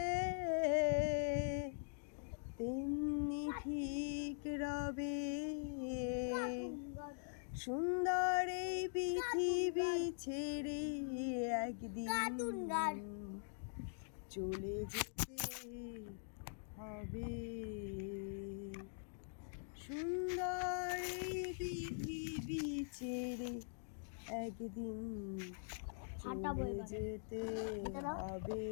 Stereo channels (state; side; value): silent; right; digital silence